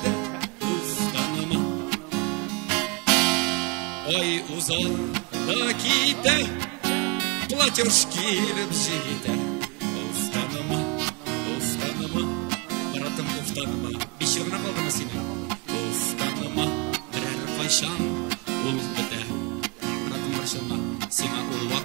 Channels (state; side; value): quieter; left; 29.2 dB